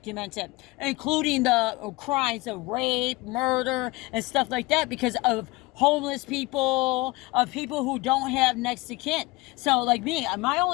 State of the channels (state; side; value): quieter; right; 21.8 dB